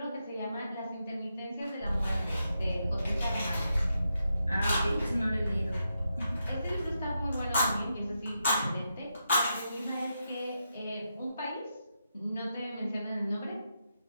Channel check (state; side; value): inverted; both; correlation -0.85